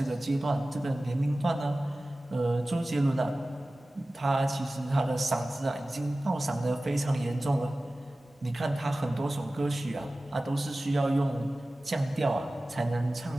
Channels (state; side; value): normal; both; correlation 0.97